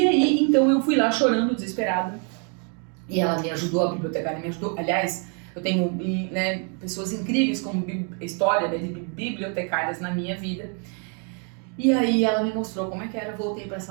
aí, então eu fui lá chorando, desesperada, e ela me ajudou, a bibliotecária me ajudou. Aliás, eu tenho, né, pessoas incríveis como história, né, de bibliotecárias na minha vida. E aí ela me mostrou como é que era, voltei para a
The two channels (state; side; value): quieter; left; 40.0 dB